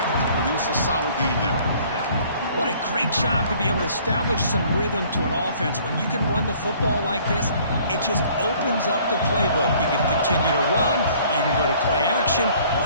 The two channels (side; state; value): both; inverted; correlation -0.56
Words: to produce a solid gain there. What a great job to be able to establish some rhythm to an offense. When you can run the football like this, it just opens up the playbook. You can continue to run. You can go to play action.